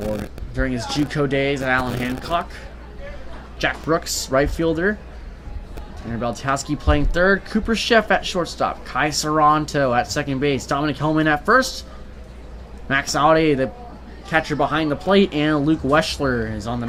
during his JUCO days at Allen Hancock. Jack Brooks, right fielder. Tanner Beltowski playing third. Cooper Sheff at shortstop. Kai Saranto at second base. Dominic Hellman at first. Max Audi, the catcher behind the plate. And Luke Weschler is on the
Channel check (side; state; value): both; identical; correlation 1.00